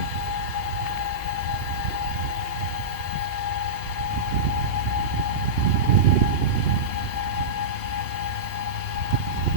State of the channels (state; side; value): late; left; 2.7 ms